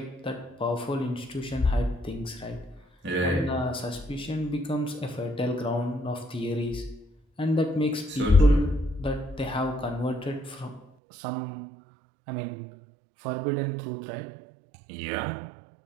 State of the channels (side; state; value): left; drops out; at 10.9 s